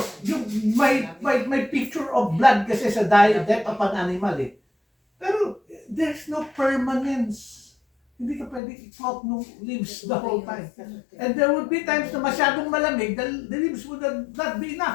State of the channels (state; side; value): drops out; right; at 8.6 s